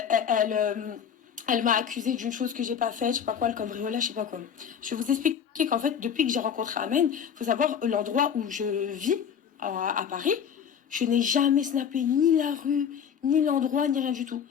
m'a accusé d'une chose que j'ai pas faite, je sais pas quoi, le cambriolage, je sais pas quoi. Je vais vous expliquer qu'en fait, depuis que j'ai rencontré Ahmed, faut savoir l'endroit où je vis à Paris, je n'ai jamais snappé ni la rue, ni l'endroit, ni rien du tout.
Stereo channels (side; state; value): right; quieter; 7.9 dB